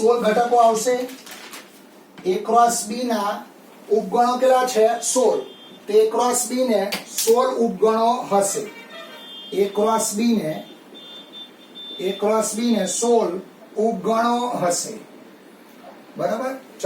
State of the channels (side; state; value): both; identical; correlation 1.00